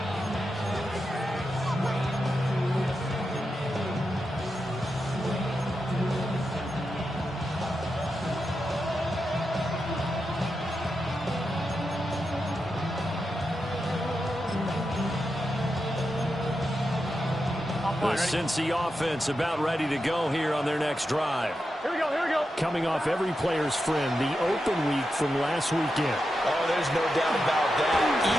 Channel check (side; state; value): both; normal; correlation 0.88